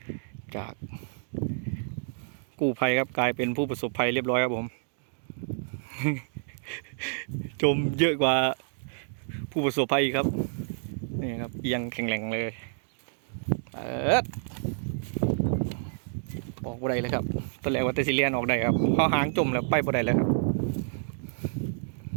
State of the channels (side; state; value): left; silent; digital silence